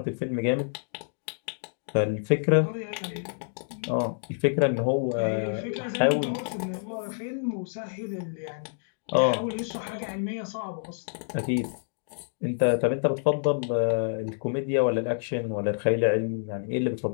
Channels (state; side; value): silent; right; digital silence